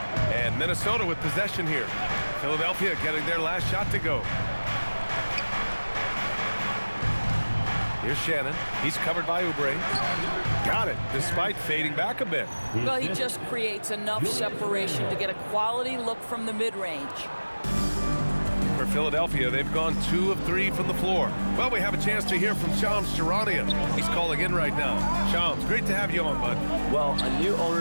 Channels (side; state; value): both; inverted; correlation -1.00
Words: And Minnesota with possession here. Philadelphia getting their last shot to go. Here's Shannon. He's covered by Oubre. Got it, despite fading back a bit. Well, he just creates enough separation to get a quality look from the mid-range. For Philadelphia, they've gone 2 of 3 from the floor. Well, we have a chance to hear from Shams Charania. He's calling in right now. Shams, great to have you on, bud. Well, a new